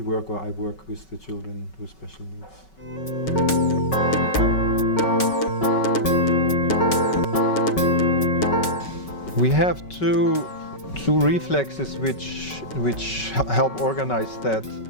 work, or I work with the children with special needs. We have two reflexes which help organize that.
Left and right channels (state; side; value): late; right; 5.3 ms